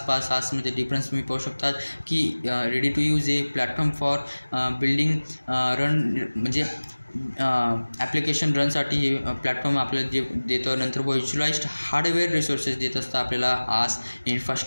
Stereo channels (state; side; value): inverted; both; correlation -1.00